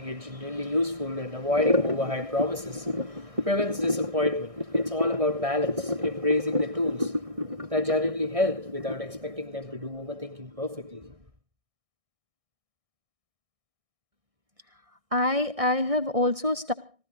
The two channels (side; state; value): left; late; 1.6 ms